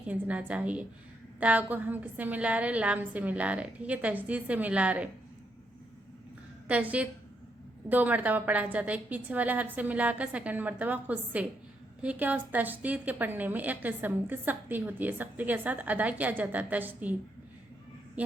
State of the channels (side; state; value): both; normal; correlation 0.78